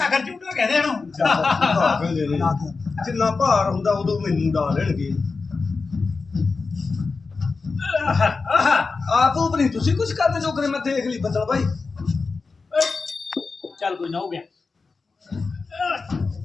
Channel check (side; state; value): right; quieter; 4.3 dB